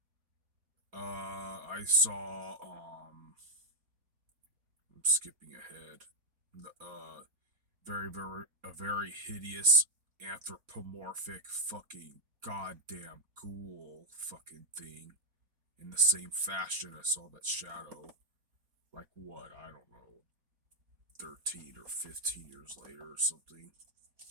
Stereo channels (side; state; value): left; late; 4.1 ms